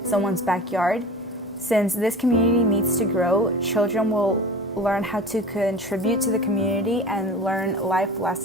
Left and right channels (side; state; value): both; normal; correlation 0.36